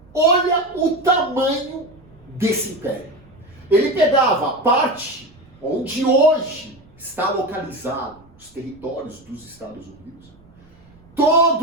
olha o tamanho desse império. Ele pegava a parte onde hoje está localizado os territórios dos Estados Unidos.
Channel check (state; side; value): noise; right; rumble, 28 dB below the sound